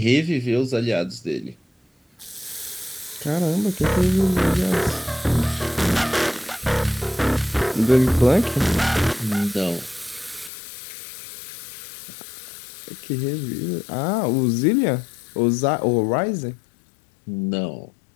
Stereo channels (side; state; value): right; drops out; at 10.5 s